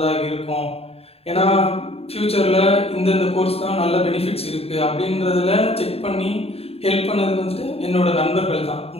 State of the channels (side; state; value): right; late; 0.29 ms